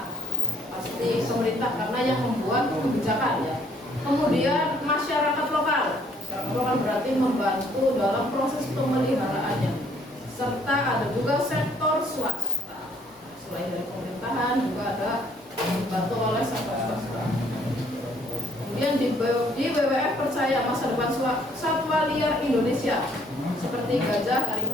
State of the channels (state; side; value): normal; both; correlation 0.64